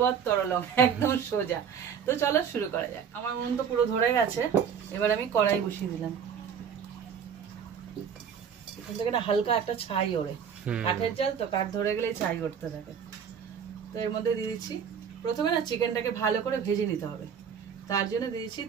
তরলং, একদম সোজা। তো চলো শুরু করা যাক। আমার মন তো পুরো ধরে গেছে, এবার আমি কড়াই বসিয়ে দিলাম। এখান থেকে না হালকা একটা ছাই ওড়ে, কাঠের জাল তো, কাঠ ধরে গেলে ছাই উঠতে থাকে। তো এর মধ্যে দিয়ে দিচ্ছি, প্রথমে না চিকেনটাকে ভালো করে ভেজে নিতে হবে, তার জন্য দিয়েছি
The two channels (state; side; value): quieter; left; 7.4 dB